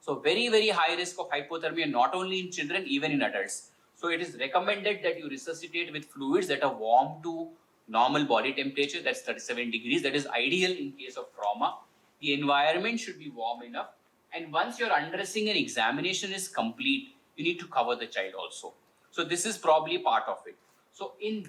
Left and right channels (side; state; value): both; identical; correlation 1.00